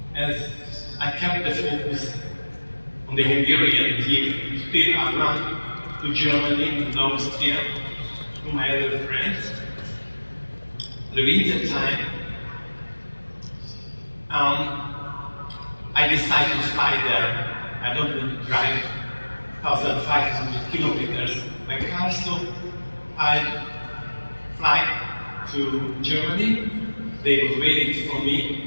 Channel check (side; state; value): both; inverted; correlation -1.00